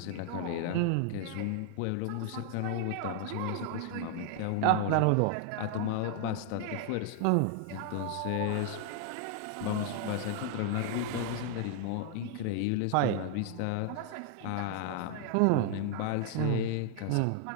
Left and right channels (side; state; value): both; different; correlation 0.00